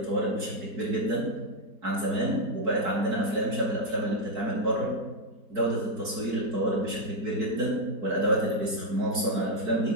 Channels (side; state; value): left; late; 4.6 ms